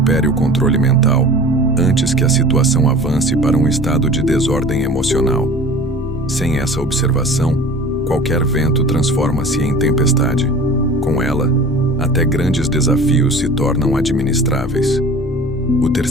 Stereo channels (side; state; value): both; normal; correlation 0.41